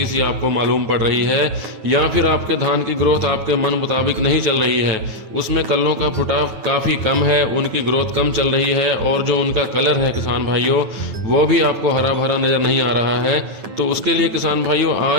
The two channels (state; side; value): late; left; 9.3 ms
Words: सी आपको मालूम पड़ रही है या फिर आपके धान की ग्रोथ आपके मन मुताबिक नहीं चल रही है, उसमें कल्लों का फुटाव काफ़ी कम है, उनकी ग्रोथ कम चल रही है और जो उनका कलर है किसान भाइयों वो भी आपको हरा भरा नज़र नहीं आ रहा है, तो उसके लिए किसान भाइयों